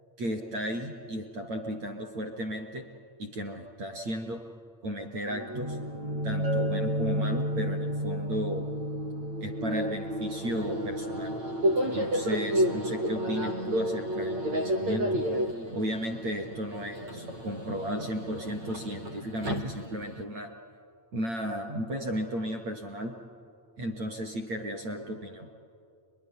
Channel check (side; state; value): left; late; 8.8 ms